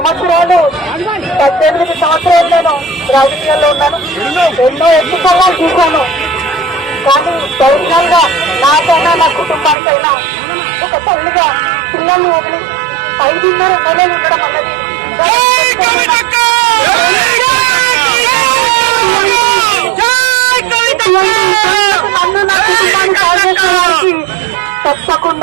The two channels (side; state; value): left; drops out; at 9.8 s